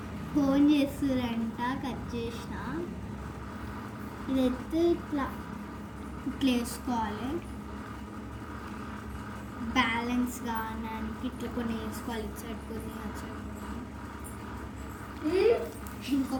ఫోన్ చేస్తారంట, కట్ చేసిన. ఇదైతే ఇట్లా వేసుకోవాలి, బ్యాలెన్స్ కావడానికి ఇట్లా కొన్ని వేసుకోవాలి, ఇటు సైడ్ కొన్ని అటు సైడ్.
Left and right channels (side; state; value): both; identical; correlation 1.00